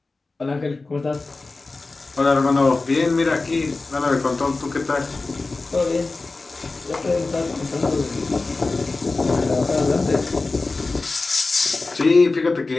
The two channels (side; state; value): right; quieter; 3.6 dB